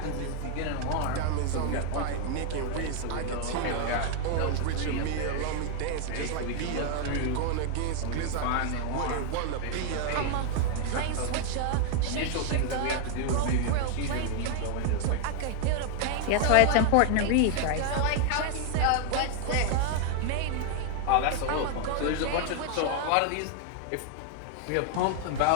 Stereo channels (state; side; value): different; both; correlation 0.00